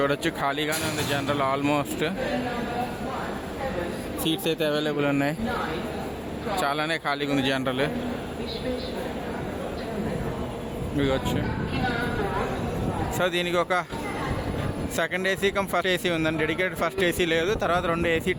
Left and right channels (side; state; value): both; identical; correlation 1.00